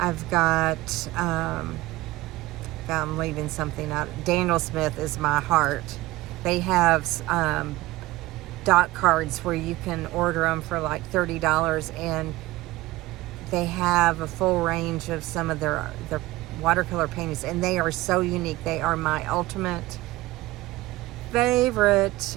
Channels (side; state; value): left; quieter; 18.6 dB